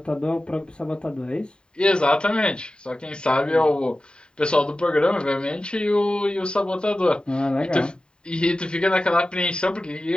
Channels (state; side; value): late; right; 0.049 ms